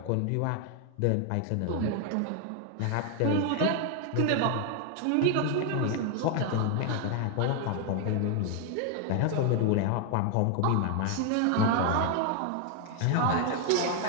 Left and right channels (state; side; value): different; both; correlation 0.01